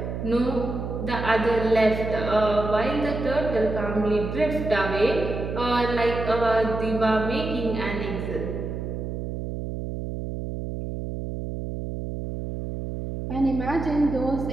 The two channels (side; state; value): right; noise; hum, 5 dB below the sound